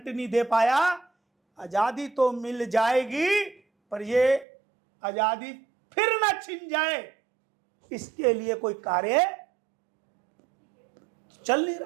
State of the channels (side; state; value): left; drops out; at 4.5 s